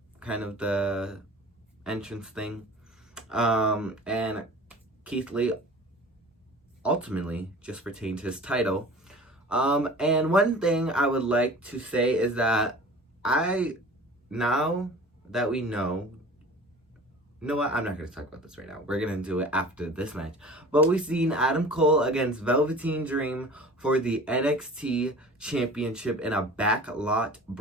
kind of the entrance thing. And Keith Lee ultimately just retained his title. And one thing I would like to say is that now that we know, you know what? I'm not going to talk about this right now. We're going to do it after this match. But we've seen Adam Cole against Velveteen Dream for the NXT Championship in a backlot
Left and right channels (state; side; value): normal; both; correlation 0.42